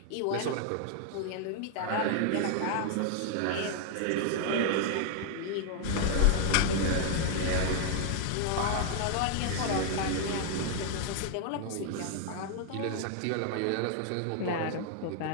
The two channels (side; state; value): both; different; correlation 0.00